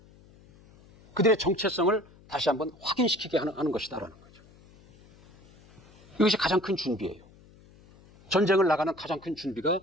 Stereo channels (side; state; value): left; noise; hum, 26 dB below the sound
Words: 그들의 정체성을 다시 한번 확인시키게 하는 것이다라는 거죠. 이것이 가장 큰 준비예요. 전쟁을 나가는 가장 큰 준비가